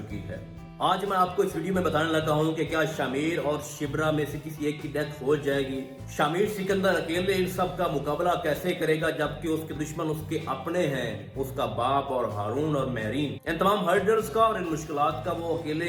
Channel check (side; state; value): both; identical; correlation 1.00